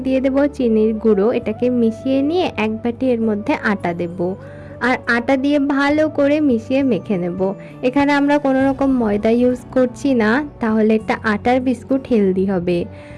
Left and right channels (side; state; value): both; identical; correlation 1.00